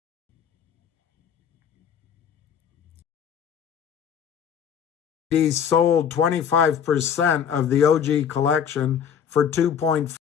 Sold 25% of the OG collection for $2.5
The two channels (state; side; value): quieter; right; 8.0 dB